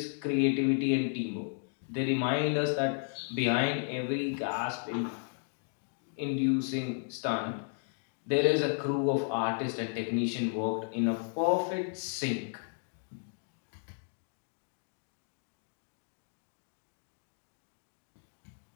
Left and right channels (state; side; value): silent; right; 55 dB below the other